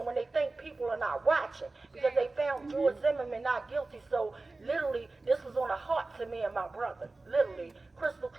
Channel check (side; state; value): left; quieter; 3.3 dB